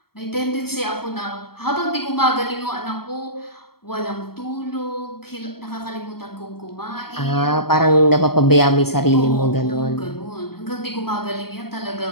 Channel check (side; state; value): right; late; 0.95 ms